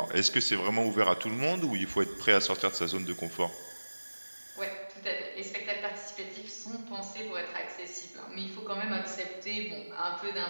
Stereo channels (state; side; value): inverted; both; correlation -1.00